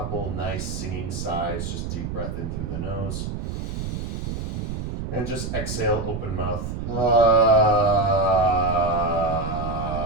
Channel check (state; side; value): noise; right; rumble, 5 dB below the sound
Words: nice singing sighs. Just deep breath in through the nose. And just exhale, open mouth.